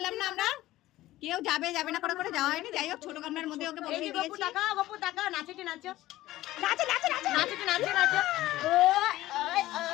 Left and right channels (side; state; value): right; quieter; 16.1 dB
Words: না আমরা, কেউ যাবে যাবে না করে যাওয়া হয়নি। যাই হোক ছোট গামলার মধ্যে ওকে বসিয়ে দিয়েছি। গপু টাকা, গপু টাকা, নাচেটে নাচো, নাচো নাচো নাচো, নাচেটে নাচো নাচো। ওই ওই